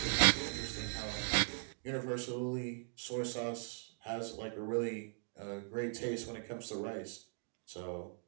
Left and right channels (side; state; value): left; silent; 52 dB below the other